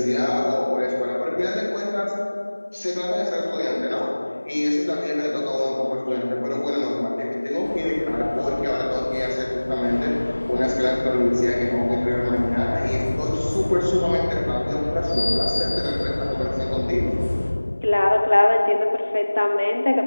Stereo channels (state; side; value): inverted; both; correlation -1.00